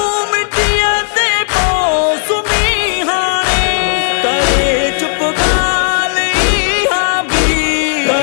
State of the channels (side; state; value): right; silent; digital silence